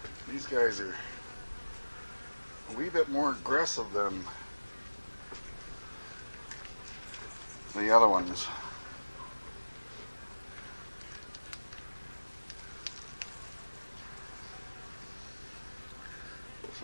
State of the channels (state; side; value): inverted; both; correlation -1.00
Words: these guys are a wee bit more aggressive than the other ones. So